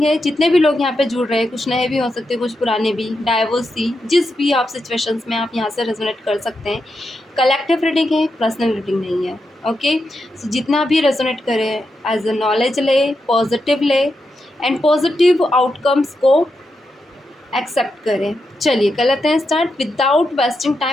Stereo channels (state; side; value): normal; both; correlation 0.86